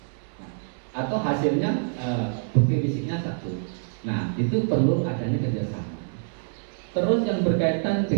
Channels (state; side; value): silent; left; digital silence